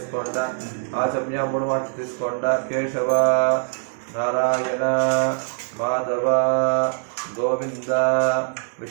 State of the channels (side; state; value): left; silent; digital silence